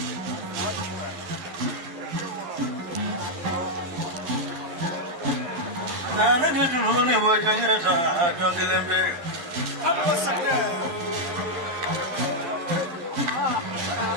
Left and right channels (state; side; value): late; left; 12 ms